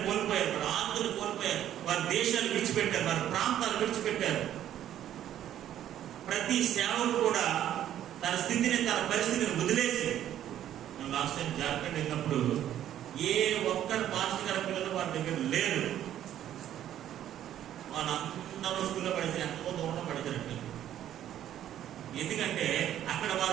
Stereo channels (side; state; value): left; quieter; 11.4 dB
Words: కోల్పోయారు, వారి ఆస్తులు కోల్పోయారు, వారి దేశాలు విడిచిపెట్టారు, వారి ప్రాంతాలు విడిచిపెట్టారు. ప్రతి సేవకుడు కూడా తన స్థితిని, తన పరిస్థితిని వదిలేసి, లాస్ట్ టైం జార్ఖండ్ వెళ్ళినప్పుడు ఏ ఒక్కరు మాస్టర్ గారి పిల్లలు వారి దగ్గర లేరు. వాళ్ళందరూ స్కూల్లో పడితే ఎంతో దూరంలో పడిచారండి. ఎందుకంటే అక్కడ